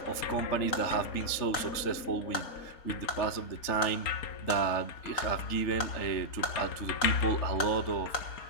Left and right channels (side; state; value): right; late; 3.4 ms